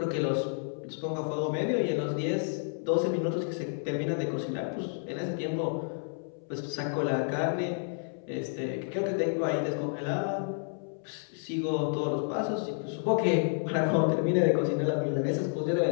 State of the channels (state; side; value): silent; right; 58 dB below the other